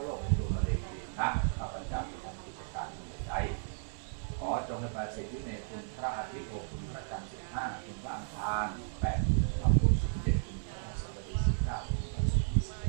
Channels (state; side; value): silent; left; digital silence